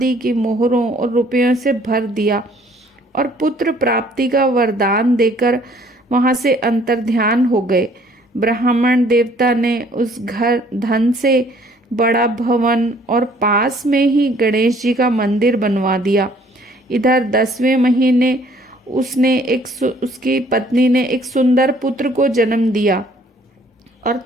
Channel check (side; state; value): both; normal; correlation 0.59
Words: की मोहरों और रुपयों से भर दिया और पुत्र प्राप्ति का वरदान देकर वहां से अंतर्ध्यान हो गए। ब्राह्मण देवता ने उस घर धन से बड़ा भवन और पास में ही गणेश जी का मंदिर बनवा दिया। इधर 10वें महीने उसकी पत्नी ने एक सुंदर पुत्र को जन्म दिया और